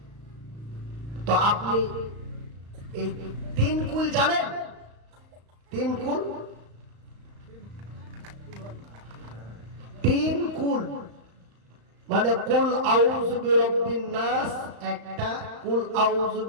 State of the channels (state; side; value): late; left; 35 ms